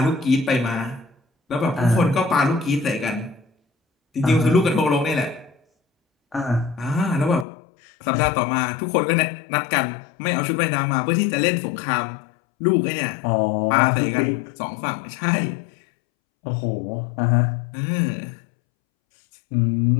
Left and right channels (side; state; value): right; drops out; at 7.5 s